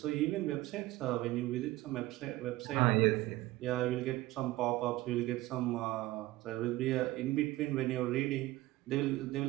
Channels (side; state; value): left; quieter; 17.8 dB